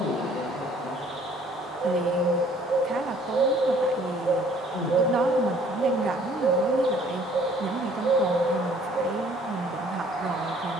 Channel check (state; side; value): normal; both; correlation 0.57